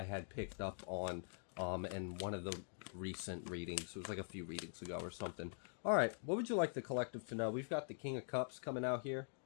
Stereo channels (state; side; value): silent; right; digital silence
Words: had picked up on in one of the recent readings. It was like a few readings ago or something. All right, what would you like the collective to know? We've got the King of Cups coming out here.